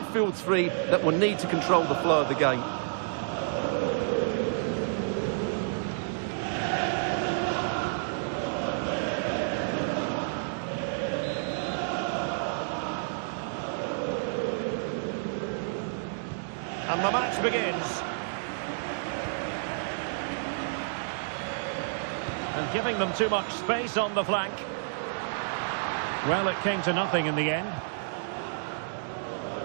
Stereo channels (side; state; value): left; silent; digital silence